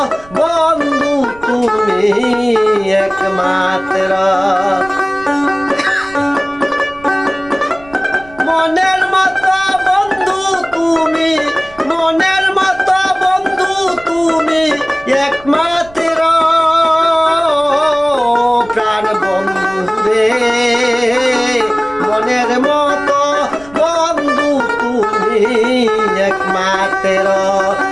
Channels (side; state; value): right; noise; rumble, 23 dB below the sound